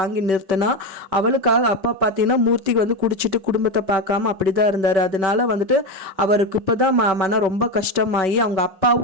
நிறுத்தினா அவளுக்காக அப்பா பார்த்தீங்கன்னா மூர்த்திக்கு வந்து குடிச்சிட்டு குடும்பத்தை பார்க்காம அப்படிதான் இருந்தார். அதனால வந்துட்டு அவருக்கு இப்போதான் மனம் ரொம்ப கஷ்டமாகி அவங்க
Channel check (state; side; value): late; left; 5.2 ms